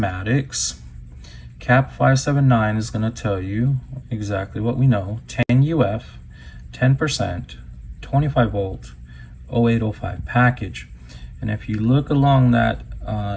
CAP 579 is going to tell you exactly what we know: 10UF, 10%, 25 volt, 0805 package. And if you look along that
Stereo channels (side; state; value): both; identical; correlation 1.00